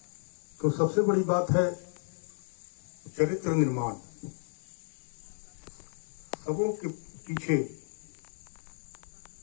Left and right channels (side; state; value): right; silent; 56 dB below the other